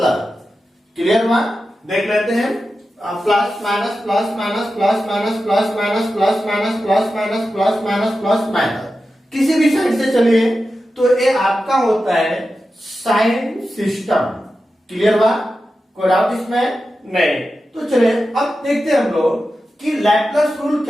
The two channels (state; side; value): normal; both; correlation 0.92